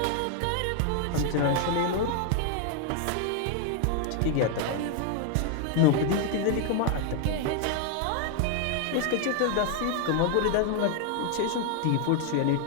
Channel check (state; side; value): different; both; correlation 0.00